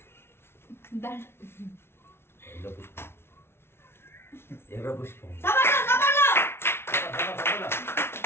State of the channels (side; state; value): right; late; 0.12 ms